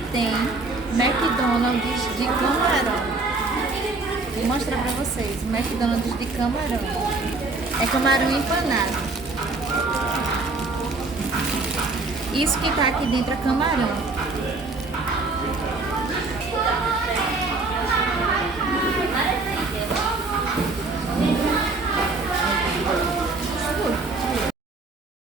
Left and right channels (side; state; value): left; quieter; 3.5 dB